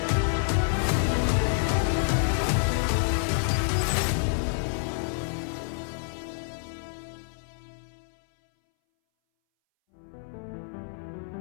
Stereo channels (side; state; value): right; silent; 59 dB below the other